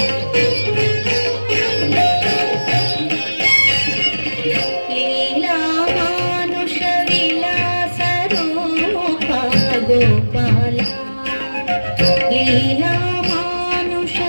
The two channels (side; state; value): both; inverted; correlation -1.00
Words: గోపాల లీలా మానుష